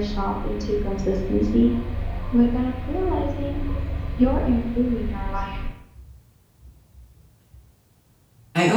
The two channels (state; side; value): identical; both; correlation 1.00